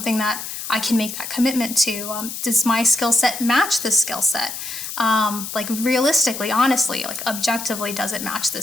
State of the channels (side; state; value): left; noise; hiss, 7 dB below the sound